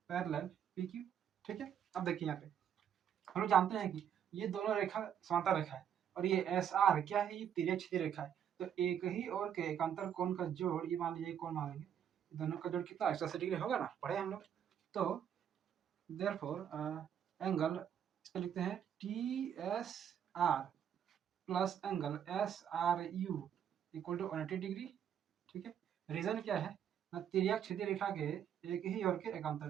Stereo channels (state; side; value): quieter; left; 9.0 dB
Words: parallel P Q. ठीक है, अब देखिए यहाँ पे हम लोग जानते हैं कि ये दोनों रेखा समांतर रेखा है, और ये एस आर क्या है, ये तिर्यक छेदी रेखा है। तो एक ही और के एकांतर कोण का जोड़, ये मान लीजिए कोण मान लेंगे, दोनों का जोड़ कितना 180 डिग्री होगा ना, पढ़े हम लोग। तो देयरफॉर एंगल इसको लिखते हैं T S R plus angle S R U equal to 180 degree. ठीक है, रीजन क्या है ना, तिर्यक छेदी रेखा के एक ही और के